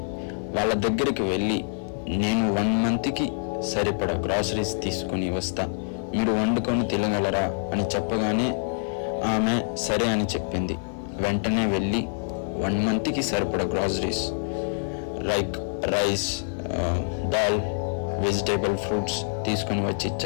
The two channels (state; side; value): silent; right; 61 dB below the other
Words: వాళ్ళ దగ్గరికి వెళ్ళి, నేను 1 మంత్కి సరిపడా గ్రాసరీస్ తీసుకొని వస్తా, మీరు వండుకొని తినగలరా అని చెప్పగానే ఆమె సరే అని చెప్పింది. వెంటనే వెళ్ళి 1 మంత్కి సరిపడా groceries like rice, dal, vegetable, fruits తీసుకొని వచ్చి